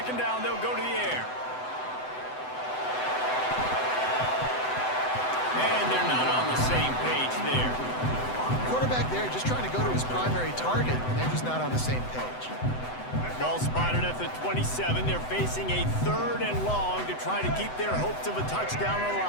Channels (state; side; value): late; right; 7.9 ms